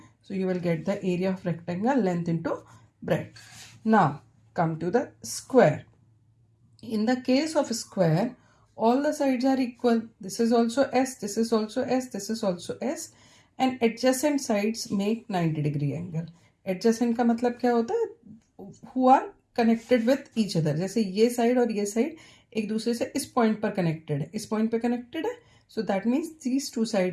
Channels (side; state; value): both; identical; correlation 1.00